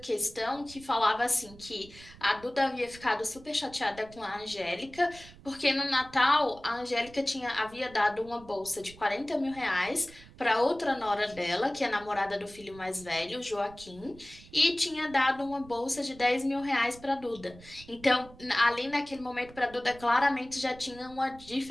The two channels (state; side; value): noise; right; rumble, 21 dB below the sound